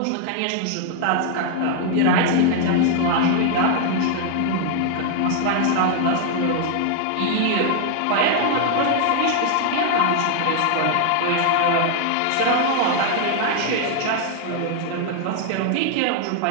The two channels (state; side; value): different; both; correlation 0.00